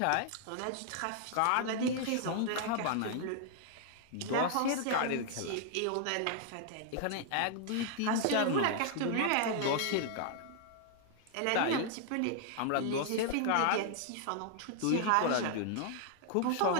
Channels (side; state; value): both; different; correlation 0.00